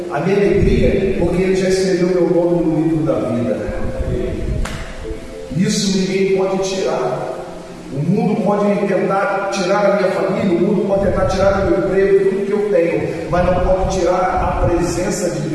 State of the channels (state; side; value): identical; both; correlation 1.00